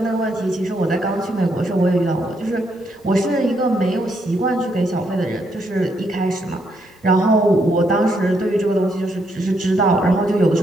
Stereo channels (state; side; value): normal; both; correlation 0.75